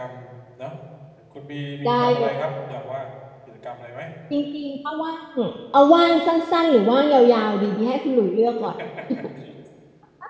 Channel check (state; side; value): identical; both; correlation 1.00